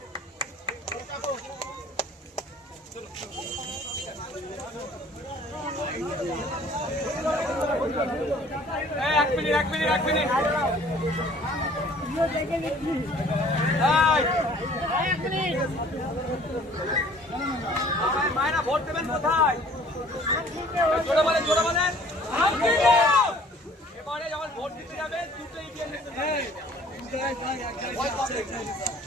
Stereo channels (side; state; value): both; normal; correlation 0.53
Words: एक मिनट मायना ভোট দেবেন কোথায়? জোরে বলেন এবারে যখন ভোট দিতে যাবেন দুটো ইভিএম